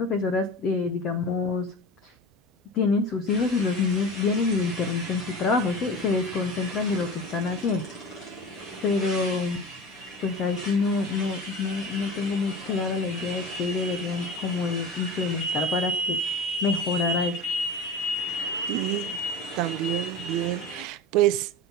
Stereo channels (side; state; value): both; normal; correlation 0.33